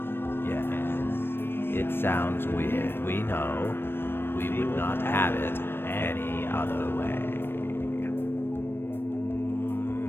Yes, it sounds weird, we know. We would not have it any other way.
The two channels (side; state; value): right; late; 0.10 ms